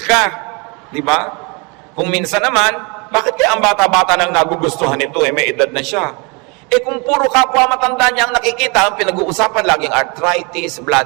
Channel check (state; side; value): quieter; left; 30.4 dB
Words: di ba? Kung minsan naman, bakit kaya ang bata-bata nang nagugustuhan nito, eh may edad na siya? Eh kung puro kapwa matanda niya ang nakikita, ang pinag-uusapan laging arthritis,